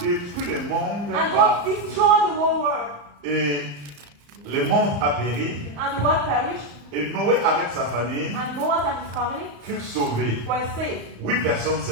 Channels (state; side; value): late; left; 35 ms